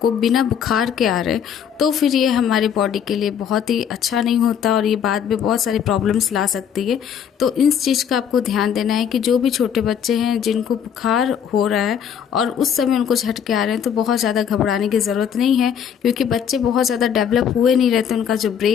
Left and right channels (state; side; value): quieter; right; 8.3 dB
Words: बिना बुखार के आ रहे हैं तो फिर ये हमारे बॉडी के लिए बहुत ही अच्छा नहीं होता और ये बाद में बहुत सारी प्रॉब्लम्स ला सकती है। तो इस चीज़ का आपको ध्यान देना है कि जो भी छोटे बच्चे हैं जिनको बुखार हो रहा है और उस समय उनको झटके आ रहे हैं तो बहुत ज़्यादा घबराने की ज़रूरत नहीं है, क्योंकि बच्चे बहुत ज़्यादा डेवलप हुए नहीं रहते, उनका जो